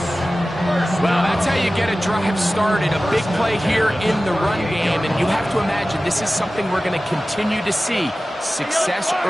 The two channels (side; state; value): both; normal; correlation 0.96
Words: Well, that's how you get a drive started. A big play here in the run game, and you have to imagine this is something we're going to continue to see. Success